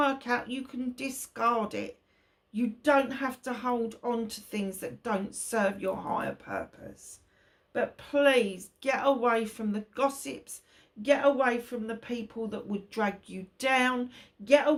out, you can discard it. You don't have to hold on to things that don't serve your higher purpose. But please get away from the gossips. Get away from the people that would drag you down. Get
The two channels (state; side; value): identical; both; correlation 1.00